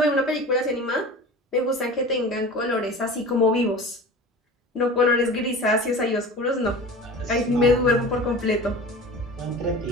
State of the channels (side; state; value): both; normal; correlation 0.36